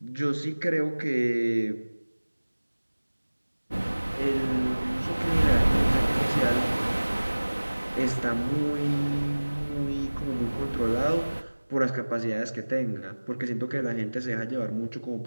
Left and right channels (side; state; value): both; inverted; correlation -1.00